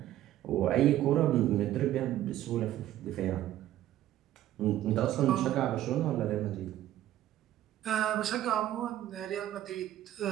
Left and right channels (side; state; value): left; quieter; 13.1 dB